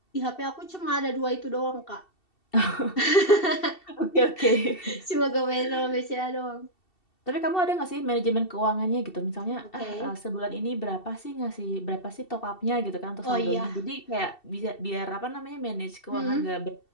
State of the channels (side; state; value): right; late; 2.7 ms